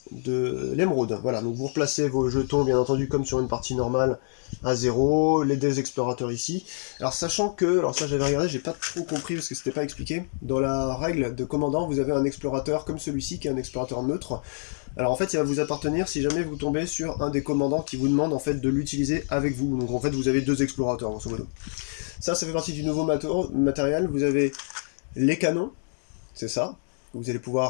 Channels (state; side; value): silent; right; digital silence